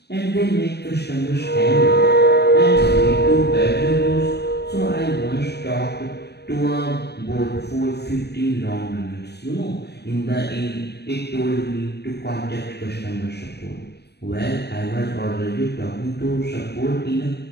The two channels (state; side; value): late; right; 0.48 ms